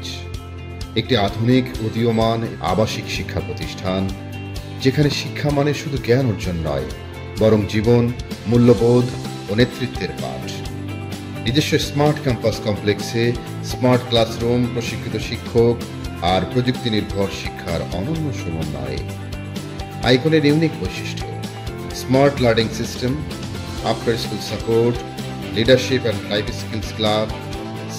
একটি আধুনিক উদীয়মান আবাসিক শিক্ষা প্রতিষ্ঠান যেখানে শিক্ষা মানে শুধু জ্ঞান অর্জন নয়, বরং জীবন, মূল্যবোধ ও নেতৃত্বের পাঠ। নিজস্ব স্মার্ট ক্যাম্পাস কমপ্লেক্সে স্মার্ট ক্লাসরুম, প্রশিক্ষিত শিক্ষক আর প্রযুক্তি নির্ভর শিক্ষার অনন্য সমন্বয়ে। আইকনের ইউনিক বৈশিষ্ট্য: smart learning system, after school support, leadership and life skills club,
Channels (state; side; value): identical; both; correlation 1.00